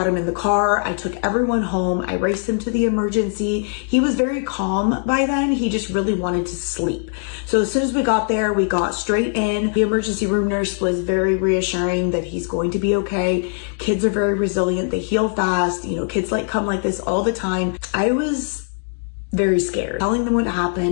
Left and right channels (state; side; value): silent; right; 64 dB below the other